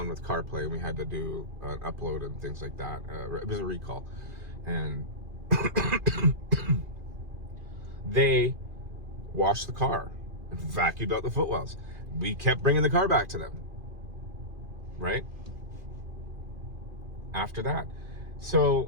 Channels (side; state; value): left; late; 2.5 ms